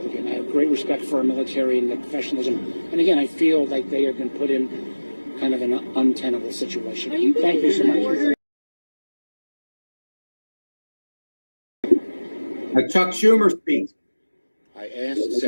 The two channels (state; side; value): inverted; both; correlation -1.00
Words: it. Again, I have great respect for our military and the professionalism. And again, I feel like they have been put in kind of an untenable situation. Thank you so much. Chuck Schumer speaks. I asked